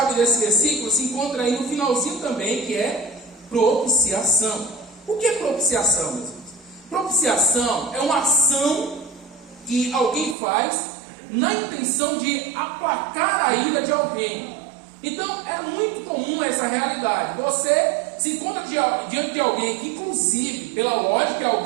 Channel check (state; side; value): drops out; left; at 10.4 s